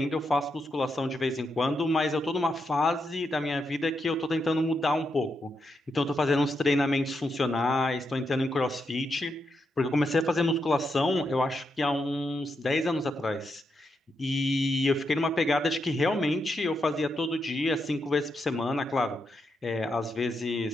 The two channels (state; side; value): normal; both; correlation 0.83